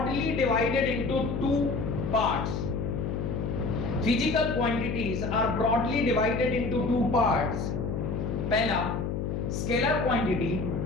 divided into two parts. Physical quantities are broadly divided into two parts. पहला स्केलर क्वांटिटी,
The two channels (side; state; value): left; noise; hum, 2 dB below the sound